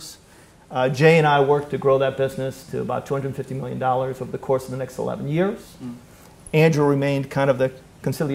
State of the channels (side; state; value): both; identical; correlation 1.00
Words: Jay and I worked to grow that business to about $250 million over the course of the next 11 years. Andrew remained kind of the